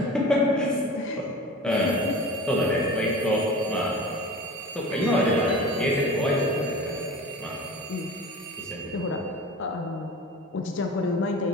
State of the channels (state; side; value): normal; both; correlation 0.36